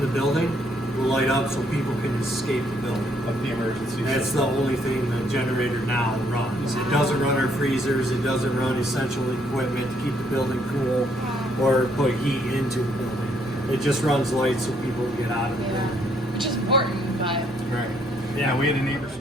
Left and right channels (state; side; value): normal; both; correlation 0.69